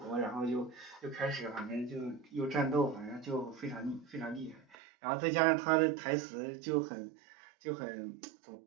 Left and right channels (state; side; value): drops out; left; at 4.8 s